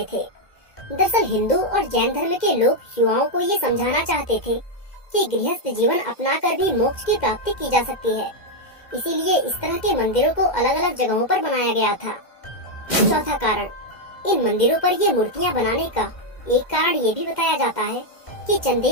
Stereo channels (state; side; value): late; right; 2.1 ms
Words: थे। दरअसल हिंदू और जैन धर्म के लोग युवाओं को ये समझाना चाहते थे कि गृहस्थ जीवन अपनाकर भी मोक्ष की प्राप्ति की जा सकती है, इसीलिए इस तरह के मंदिरों को अलग अलग जगहों पर बनाया गया था। चौथा कारण, इन मंदिरों पर ये मूर्तियां बनाने का एक कारण ये भी बताया जाता है कि